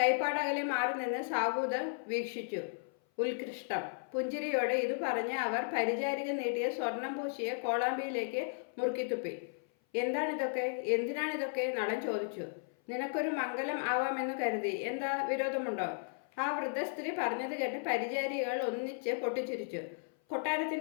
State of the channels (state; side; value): silent; right; 54 dB below the other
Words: മാറി നിന്ന് സാബൂത് വീക്ഷിച്ചു. ഉത്കൃഷ്ടം. പുഞ്ചിരിയോടെ ഇത് പറഞ്ഞ് അവർ പരിചാരിക നീട്ടിയ സ്വർണം പൂശിയ കോളാമ്പിയിലേക്ക് മുറുക്കിത്തുപ്പി. എന്താണിതൊക്കെ, എന്തിനാണിതൊക്കെ? നളൻ ചോദിച്ചു. നിനക്കൊരു മംഗലം ആവാമെന്ന് കരുതി. എന്താ വിരോധമുണ്ടോ? ആ വൃദ്ധ സ്ത്രീ പറഞ്ഞത് കേട്ട് പരിചാരികൾ ഒന്നിച്ച് പൊട്ടിച്ചിരിച്ചു.